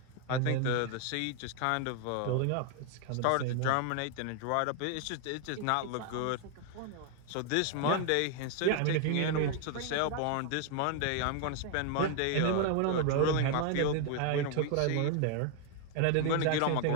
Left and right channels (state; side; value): different; both; correlation 0.01